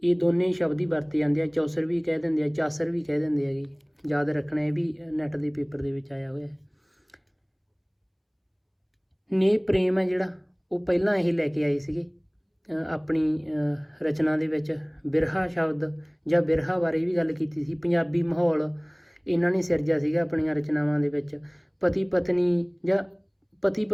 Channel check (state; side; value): identical; both; correlation 1.00